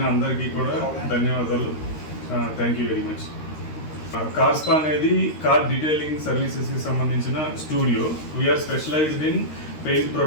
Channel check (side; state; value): right; late; 13 ms